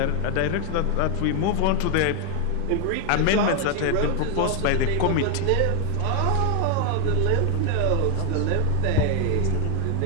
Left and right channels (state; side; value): different; both; correlation 0.01